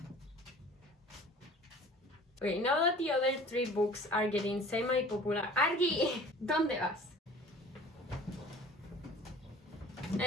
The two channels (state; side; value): normal; both; correlation 0.46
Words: Okay, now that the other 3 books are getting semi-popular. Argi, ¿dónde vas?